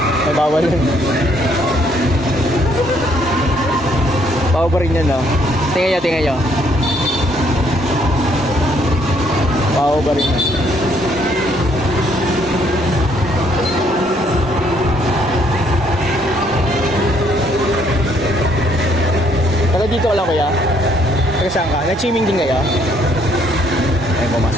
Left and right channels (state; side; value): normal; both; correlation 0.68